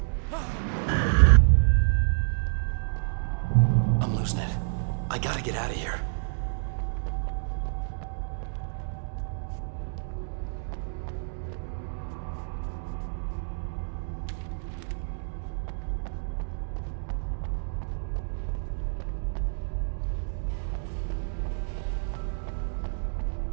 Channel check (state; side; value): silent; left; digital silence